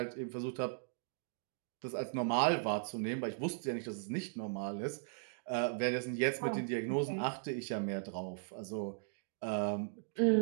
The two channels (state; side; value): silent; left; digital silence